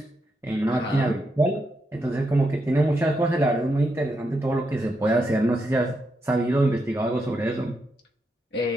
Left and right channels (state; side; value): normal; both; correlation 0.82